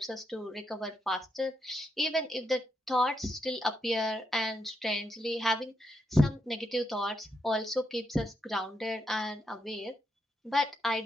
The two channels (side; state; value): both; normal; correlation 0.81